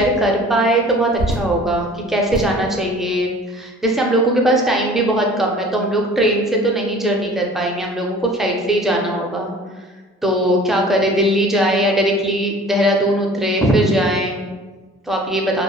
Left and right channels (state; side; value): normal; both; correlation 0.47